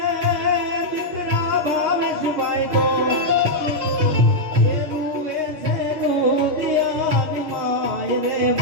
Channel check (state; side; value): late; left; 6.9 ms